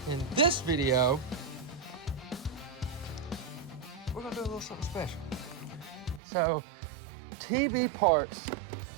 in this video, we're gonna do a little something special. So TB Parts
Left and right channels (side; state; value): left; drops out; at 6.2 s